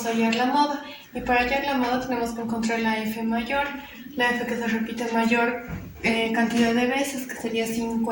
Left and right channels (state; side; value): identical; both; correlation 1.00